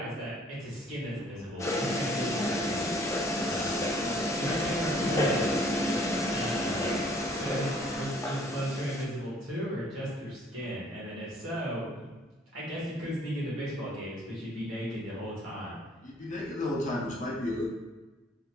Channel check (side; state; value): both; normal; correlation 0.58